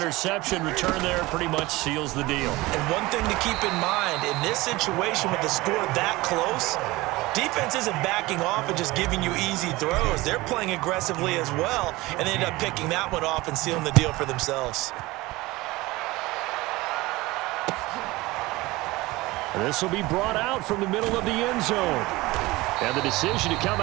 return there pretty much seals the deal. And one thing to keep in mind, in this situation with the score that close, defense isn't backing off and just giving you easy throws. They're playing aggressively as well, and they end up picking that one off and sealing the deal for themselves. This will be brought out from the middle of the end zone. And the decision to come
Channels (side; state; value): left; quieter; 20.4 dB